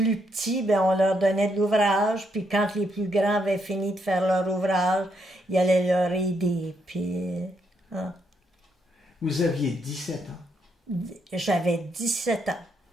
petits, ben, on leur donnait de l'ouvrage. Puis quand les plus grands avaient fini de faire leur ouvrage, ils allaient leur aider. Puis... Hein. Vous aviez 17 ans? J'avais 17 ans.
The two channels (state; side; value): normal; both; correlation 0.77